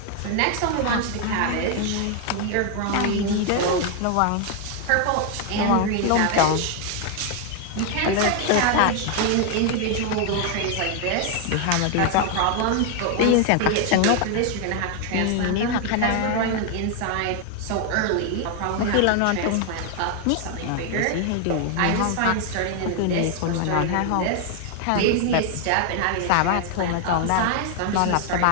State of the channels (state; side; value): different; both; correlation 0.00